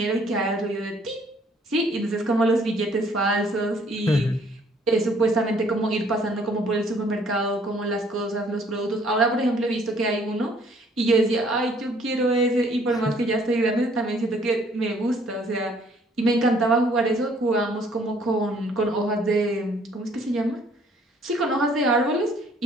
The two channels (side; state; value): both; normal; correlation 0.61